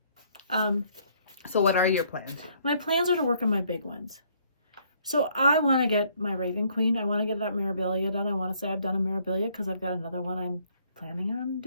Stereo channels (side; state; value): both; inverted; correlation -0.64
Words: what are your plans? My plans are to work on my big ones. So I want to get my Raven Queen. I want to get that Mirabilia done. I want to say I've done a Mirabilia because I've got another one I'm planning on